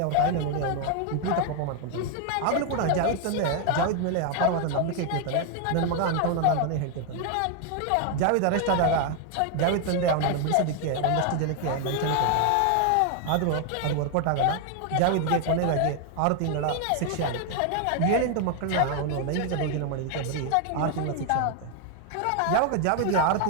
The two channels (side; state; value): both; different; correlation 0.00